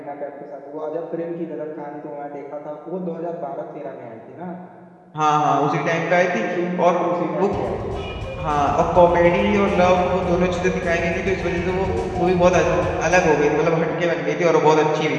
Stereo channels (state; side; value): identical; both; correlation 1.00